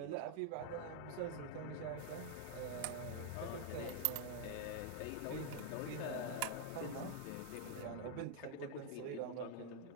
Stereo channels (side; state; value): both; different; correlation 0.00